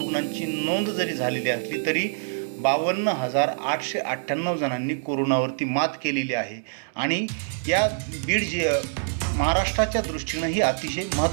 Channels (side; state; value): left; silent; digital silence